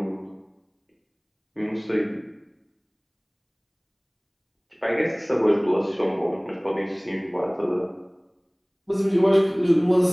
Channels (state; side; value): identical; both; correlation 1.00